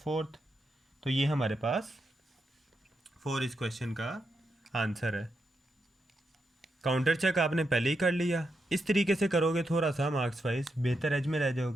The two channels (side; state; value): both; normal; correlation 0.84